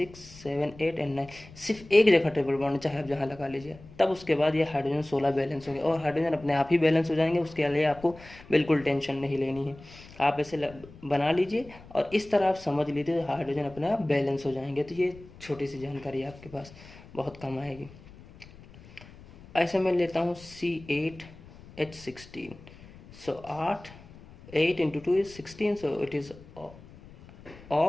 7 8 एंड 9, सिर्फ एक जगह ट्रिपल बॉन्ड है, चाहे आप जहाँ लगा लीजिए। तब उसके बाद ये हाइड्रोजन 16 बैलेंस हो गए, और हाइड्रोजन अपने आप ही बैलेंस हो जाएंगे, उसके लिए आपको बिल्कुल टेंशन नहीं लेनी है। आप ऐसे बना लीजिए और इस तरह आप समझ लीजिए, हाइड्रोजन अपने आप बैलेंस हो जाएंगे। तो ये छोटी सी जानकारी आपके पास बहुत कम आएगी। ऐसे मैं लेता हूँ C8H16, so 8 into 2 is 16, so it is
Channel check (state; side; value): noise; left; rumble, 20 dB below the sound